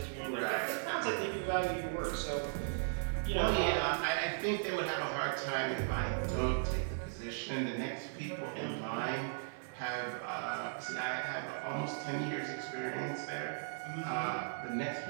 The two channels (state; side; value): silent; left; 53 dB below the other